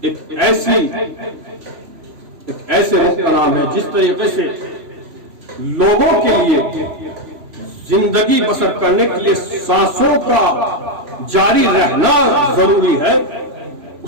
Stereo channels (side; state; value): left; late; 3.0 ms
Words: ایک ایسے رخ کا نام ہے جس طریقے سے لوگوں کے لیے زندگی بسر کرنے کے لیے سانسوں کا جاری رہنا ضروری ہے،